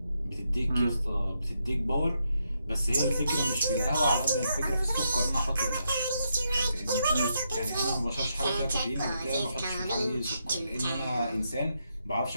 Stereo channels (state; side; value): inverted; both; correlation -0.81